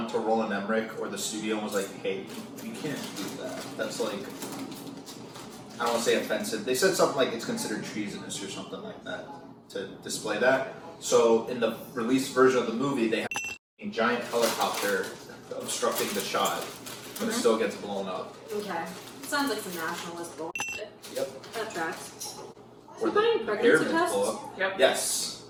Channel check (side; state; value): both; identical; correlation 1.00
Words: to Roland Emmerich or the studio and was like, hey, you can't do that. That's, like, I don't want to say offensive. They said something like it's considered treasonous or something like that to display that. So, in the released version of the movie, they have a giant helicopter obstructing the shot, but it still gets blown up. Okay. Sounds like some nationalist bullshit. Yep. That tracks. Or Is he buying pregnancy pyramids tests? blow up. Yep. Yes.